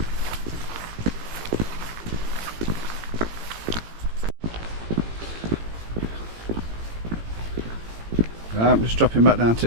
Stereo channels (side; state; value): left; late; 18 ms